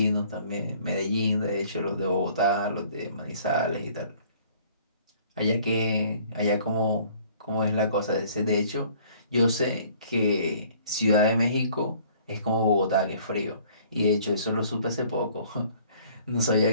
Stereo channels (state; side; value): inverted; both; correlation -0.56